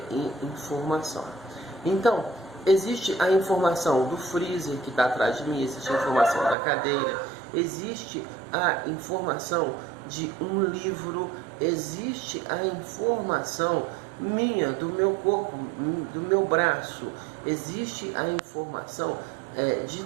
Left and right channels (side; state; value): left; drops out; at 6.6 s